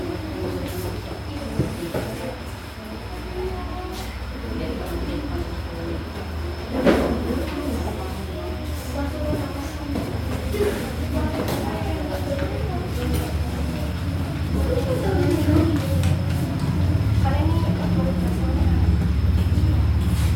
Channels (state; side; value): identical; both; correlation 1.00